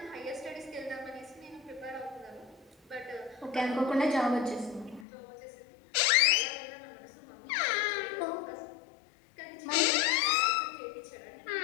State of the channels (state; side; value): drops out; right; at 5.1 s